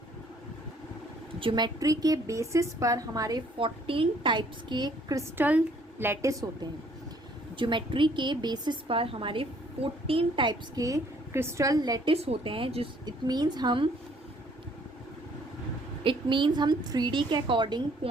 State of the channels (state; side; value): normal; both; correlation 0.62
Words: ज्योमेट्री के बेसिस पर हमारे 14 टाइप्स के क्रिस्टल लैटिस होते हैं। ज्योमेट्री के बेसिस पर हमारे 14 टाइप्स के क्रिस्टल लैटिस होते हैं, जिस इट मीन्स हम 3D के अकॉर्डिंग